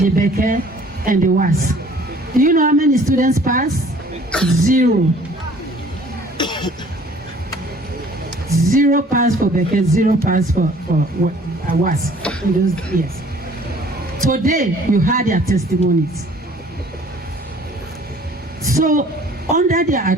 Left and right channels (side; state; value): both; normal; correlation 0.54